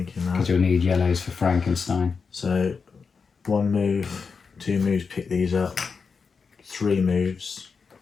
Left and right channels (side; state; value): right; quieter; 5.3 dB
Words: because that. you'll need yellows for Frankenstein. So 1 move, 2 moves, pick these up. 3 moves